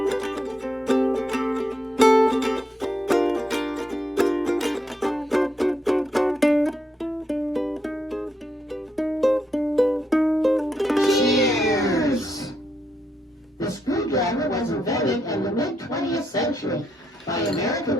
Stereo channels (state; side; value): normal; both; correlation 0.80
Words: Was invented in the mid-20th century by American